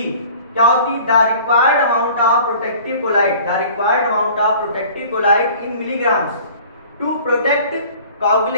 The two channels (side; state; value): both; inverted; correlation -0.47